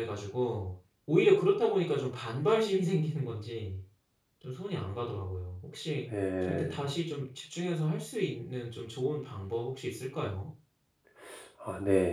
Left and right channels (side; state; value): both; identical; correlation 1.00